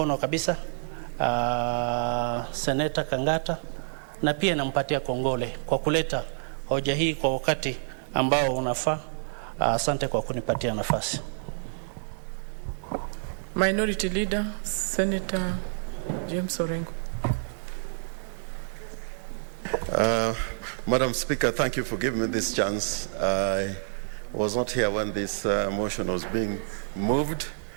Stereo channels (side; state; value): left; silent; digital silence